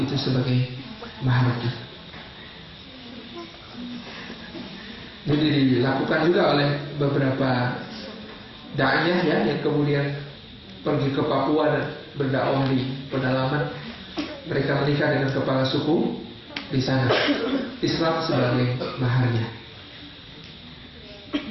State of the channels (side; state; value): both; identical; correlation 1.00